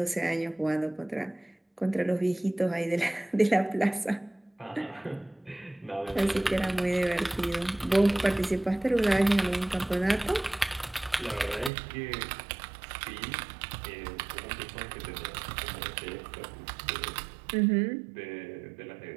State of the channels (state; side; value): drops out; left; at 11.7 s